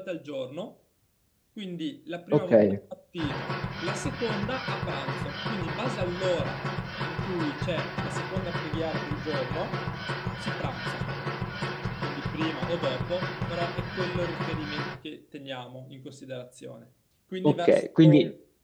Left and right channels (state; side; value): identical; both; correlation 1.00